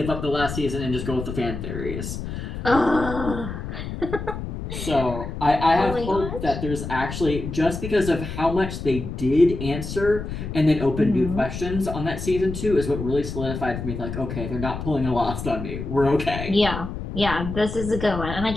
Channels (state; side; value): noise; left; rumble, 7 dB below the sound